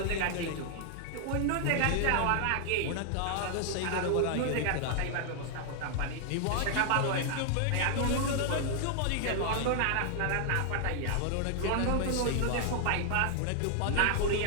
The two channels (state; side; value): different; both; correlation 0.00